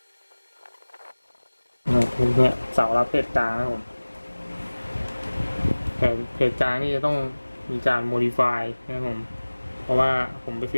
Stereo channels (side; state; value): both; inverted; correlation -1.00